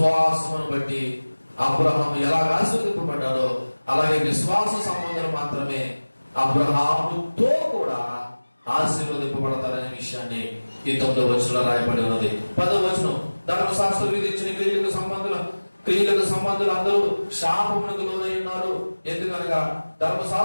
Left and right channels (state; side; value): inverted; both; correlation -1.00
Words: బట్టి అబ్రహాము ఎలా ఆశీర్వదింపబడ్డాడో అలాగే విశ్వాస సంబంధాలు మాత్రమే అబ్రహాముతో కూడా ఆశీర్వదింపబడతారనే విషయాన్ని ఈ 9వ వచనంలో రాయబడి ఉన్నది. 10వ వచనం, ధర్మశాస్త్రం విధించిన క్రియలకు సంబంధులు అందరూ శాపమునకు లోనై ఉన్నారు. ఎందుకనగా